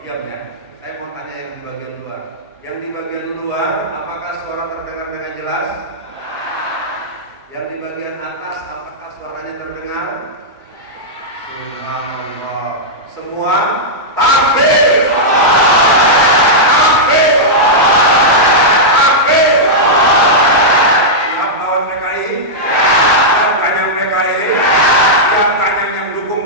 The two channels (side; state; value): both; normal; correlation -0.10